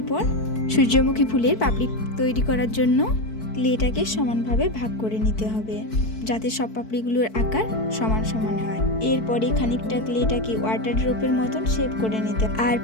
সূর্যমুখী ফুলের পাপড়ি তৈরি করার জন্য ক্লেটাকে সমানভাবে ভাগ করে নিতে হবে, যাতে সব পাপড়িগুলোর আকার সমান সমান হয়। এরপরে খানিকটা ক্লেটাকে ওয়াটার ড্রপের মতন শেপ করে নিতে। আর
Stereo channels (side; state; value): right; late; 4.6 ms